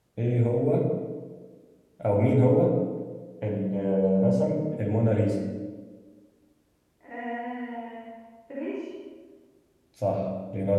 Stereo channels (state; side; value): identical; both; correlation 1.00